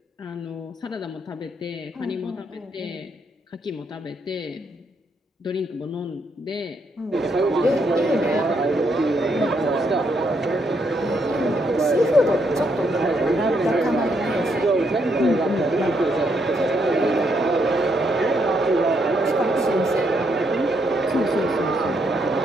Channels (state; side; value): normal; both; correlation 0.75